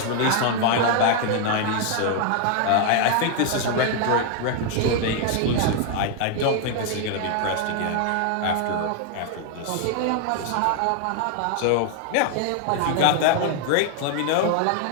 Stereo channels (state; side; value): different; both; correlation 0.00